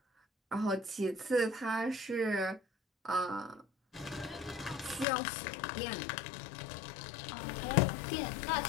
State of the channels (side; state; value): right; drops out; at 5.1 s